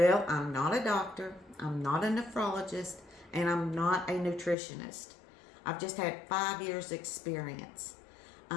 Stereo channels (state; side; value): drops out; right; at 4.5 s